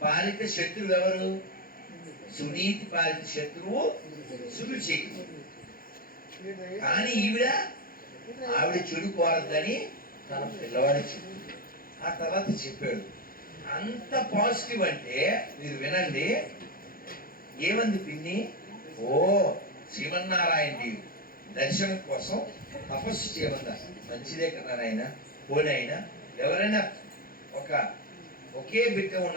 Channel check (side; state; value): right; late; 0.42 ms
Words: పాలిత శత్రువు ఎవరు? సునీతి పాలిత శత్రువు సురుచి. కానీ ఆవిడ చెడు కోరద్దని తన పిల్లవాడి చెప్పు. ఆ తర్వాత చెప్పాడు. అంత పాజిటివ్ అంటే మీరు వినండి, ఏమంది పిన్ని, ఓ శ్రీమన్నారాయణ దర్శనం కోసం తపస్సు చేయమందా, మంచిదే కదా నాయన, పోనీ అయినా ఎవరైనా ఒకే బిడ్డ